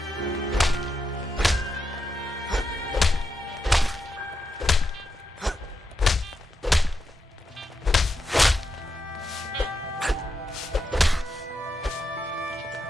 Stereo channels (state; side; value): normal; both; correlation 0.85